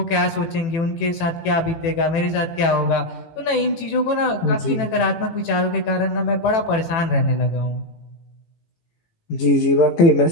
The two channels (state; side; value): late; right; 18 ms